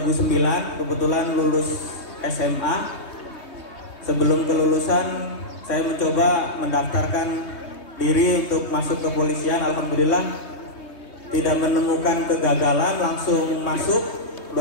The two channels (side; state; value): right; late; 3.2 ms